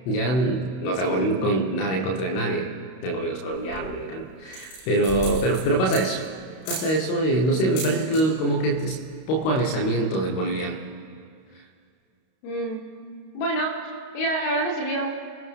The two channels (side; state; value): right; late; 32 ms